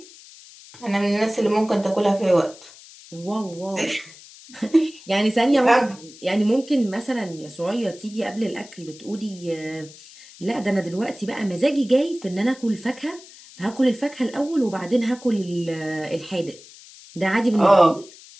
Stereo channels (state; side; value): noise; left; hiss, 20 dB below the sound